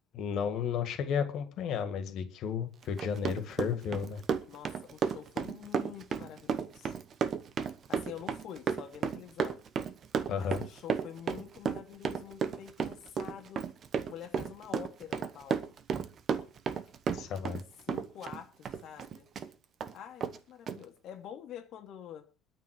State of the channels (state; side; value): normal; both; correlation 0.61